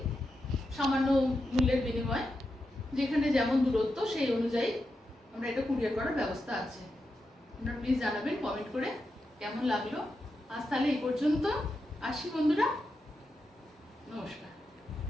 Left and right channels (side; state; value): both; normal; correlation 0.87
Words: সামান্য মূল্যের বিনিময়ে, যেখানে যেমন দূরত্ব সেই অনুযায়ী আমরা এটা কুরিয়ার করার ব্যবস্থা আছে। আপনারা প্লিজ জানাবেন কমেন্ট করে কেমন লাগলো। আজ তাহলে এই পর্যন্ত, আসি বন্ধুরা, নমস্কার।